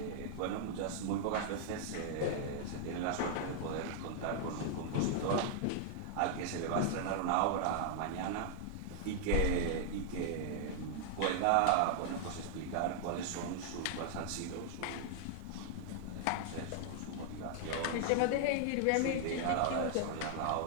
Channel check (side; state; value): both; different; correlation -0.01